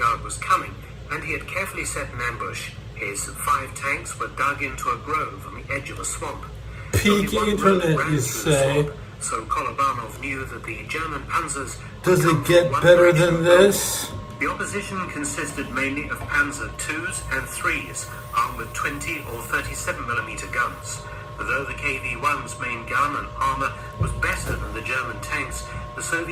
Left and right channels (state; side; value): identical; both; correlation 1.00